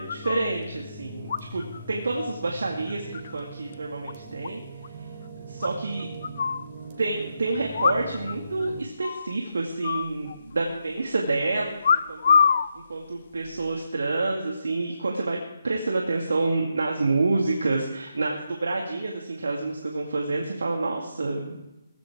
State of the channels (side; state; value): both; inverted; correlation -0.84